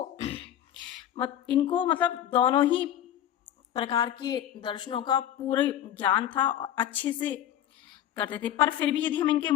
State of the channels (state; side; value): quieter; right; 11.1 dB